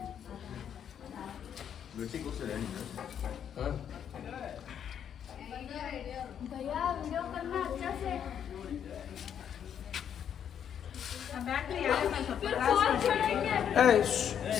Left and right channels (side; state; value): right; quieter; 8.8 dB